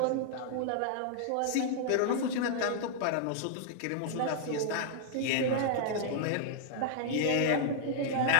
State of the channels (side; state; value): both; different; correlation -0.01